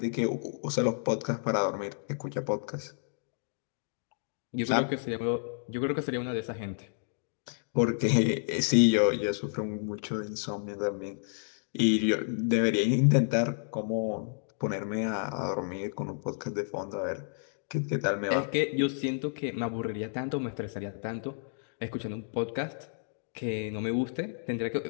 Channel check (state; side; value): silent; right; digital silence